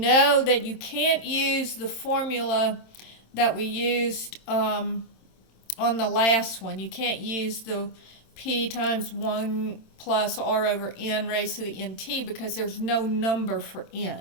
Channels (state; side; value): late; right; 26 ms